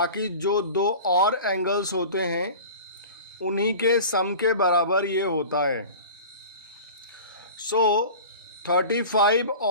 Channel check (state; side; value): inverted; both; correlation -0.37